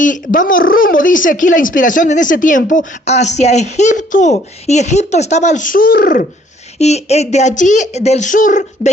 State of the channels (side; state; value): both; normal; correlation 0.61